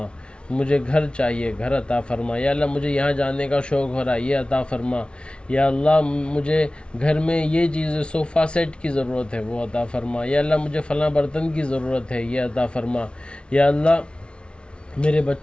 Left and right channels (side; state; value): right; late; 0.058 ms